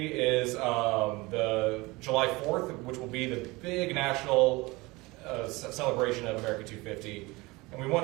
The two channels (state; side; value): quieter; left; 22.8 dB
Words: is the July 4th, which will be the big national celebration of America 250. And we want